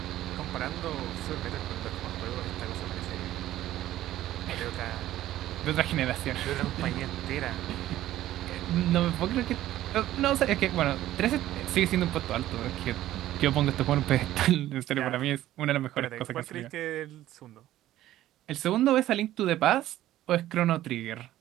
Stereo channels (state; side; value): quieter; left; 14.0 dB